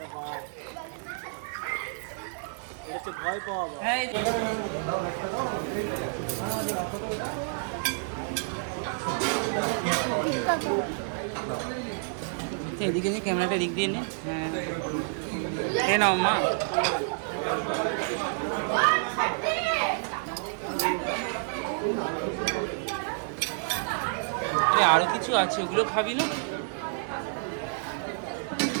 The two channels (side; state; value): left; silent; digital silence